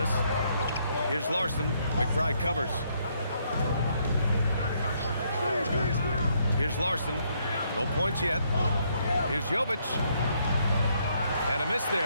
Here's Larson. McBride covers. Here's Larson. No points yet. Here's Jovic. And a miss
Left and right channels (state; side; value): inverted; both; correlation -0.72